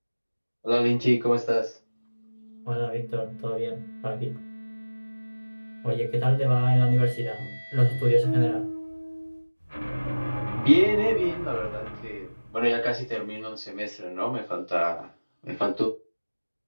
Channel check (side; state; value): both; inverted; correlation -1.00